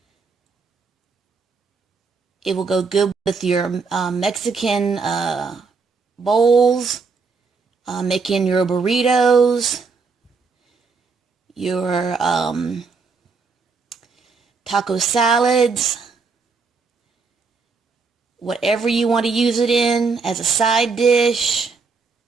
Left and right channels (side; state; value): left; quieter; 4.7 dB